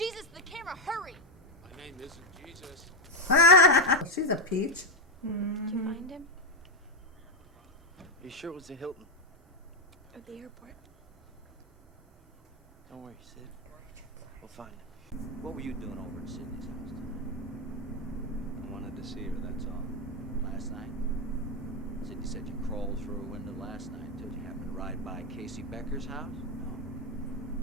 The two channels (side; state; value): both; normal; correlation 0.07